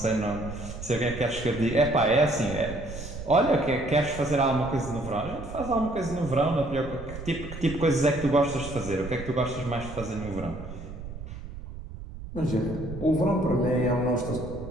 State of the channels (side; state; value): right; noise; rumble, 11 dB below the sound